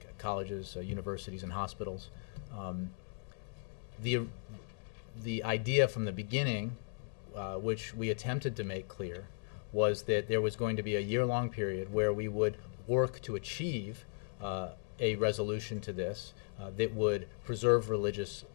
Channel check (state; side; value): silent; right; digital silence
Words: colleges, universities, and hospitals. The idea from the beginning, which we attempted to make clear, was that there was going to be a year-long period where we would work to achieve a resolution to this that would preserve religious